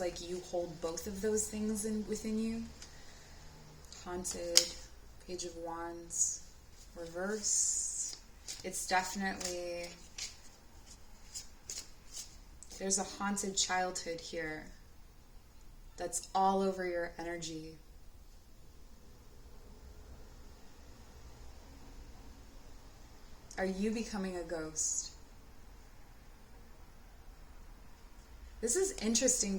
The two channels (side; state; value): both; identical; correlation 1.00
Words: you hold both of those things within you. Haunted, Page of Wands, reverse. It's definitely, there's a haunted childhood here that's all over your energy. Are you becoming a ghost? This is interesting